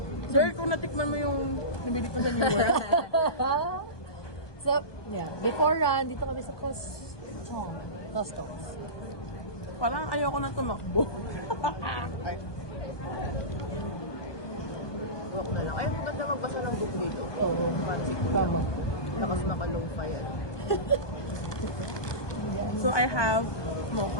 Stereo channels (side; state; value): right; late; 1.2 ms